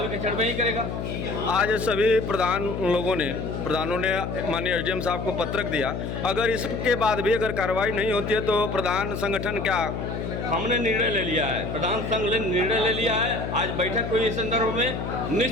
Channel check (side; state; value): left; noise; hum, 4 dB below the sound